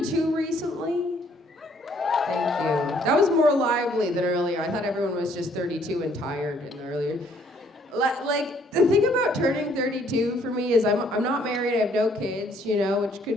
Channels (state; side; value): normal; both; correlation 0.64